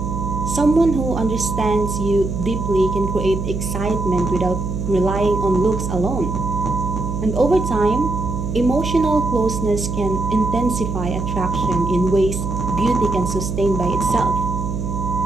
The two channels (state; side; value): noise; right; hum, 4 dB below the sound